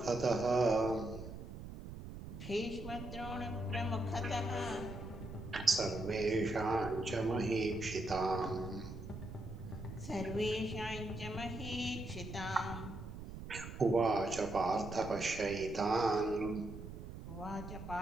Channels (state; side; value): noise; right; rumble, 10 dB below the sound